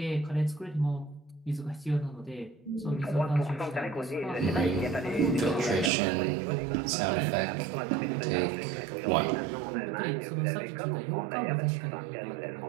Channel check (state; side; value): drops out; left; at 5.9 s